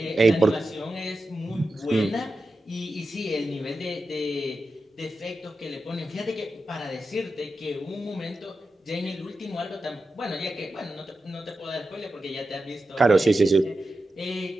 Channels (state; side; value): normal; both; correlation 0.91